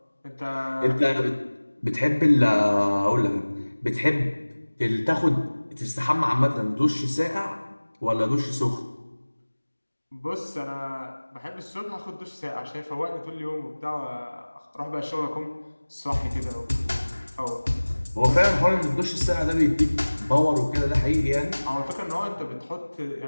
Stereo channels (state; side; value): inverted; both; correlation -1.00